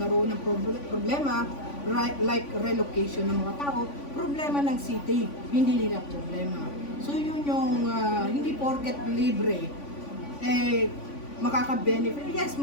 ng problema like relocation ng mga tao, problema ng city, hindi nila problema. So yun yung hindi porket libre, makaka-benefit. Yes,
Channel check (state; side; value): late; right; 3.5 ms